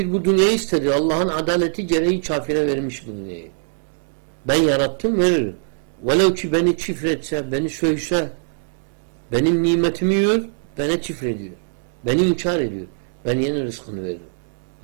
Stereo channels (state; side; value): silent; left; digital silence